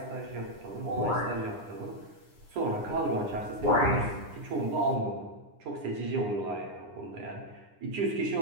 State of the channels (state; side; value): late; left; 9.8 ms